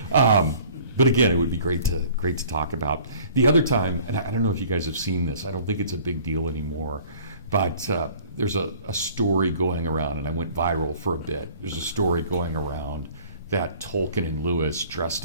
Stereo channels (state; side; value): inverted; both; correlation -0.51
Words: But again, it would be great to talk about. The other time, and I don't know if you guys have seen this, I don't think it's a big deal anymore, but there's a story going around, and I went viral for a bit. There's a story going around that Tolkien and Lewis